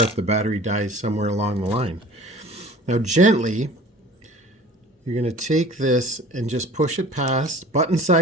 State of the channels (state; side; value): normal; both; correlation 0.45